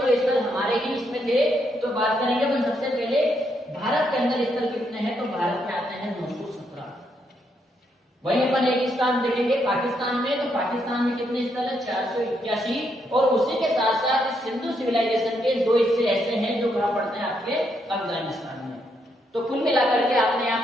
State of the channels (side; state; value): both; normal; correlation 0.77